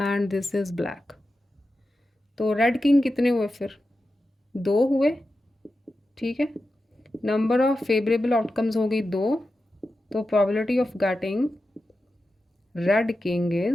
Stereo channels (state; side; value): normal; both; correlation 0.91